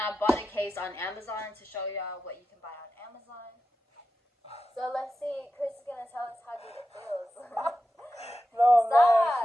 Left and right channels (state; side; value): normal; both; correlation 0.92